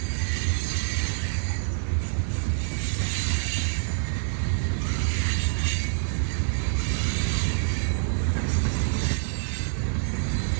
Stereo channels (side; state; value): left; silent; digital silence